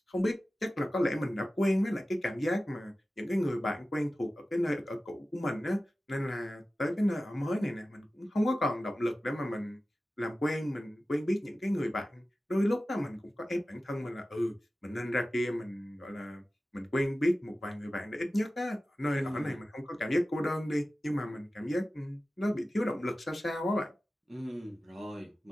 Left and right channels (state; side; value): normal; both; correlation 0.95